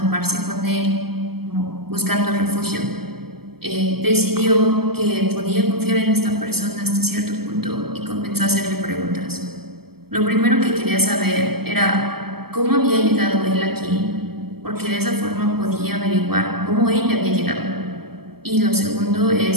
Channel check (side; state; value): left; late; 0.96 ms